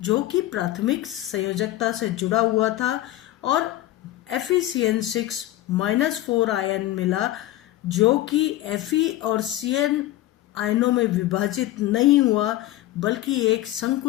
जो कि प्राथमिक संयोजकता से जुड़ा हुआ था, और FeCN6-4 आयन मिला जो कि Fe और Cn आयनों में विभाजित नहीं हुआ बल्कि एक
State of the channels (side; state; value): right; quieter; 15.2 dB